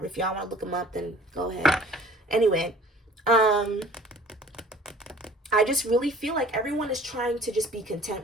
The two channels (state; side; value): normal; both; correlation 0.50